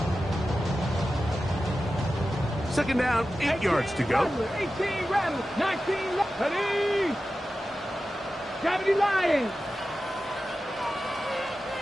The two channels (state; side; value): normal; both; correlation 0.93